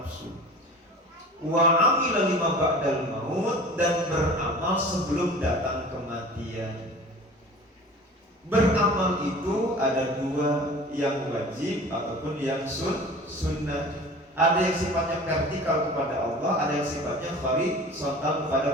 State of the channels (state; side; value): normal; both; correlation 0.40